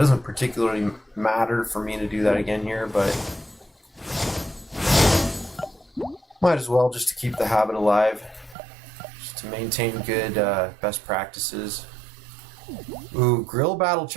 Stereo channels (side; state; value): left; drops out; at 8.6 s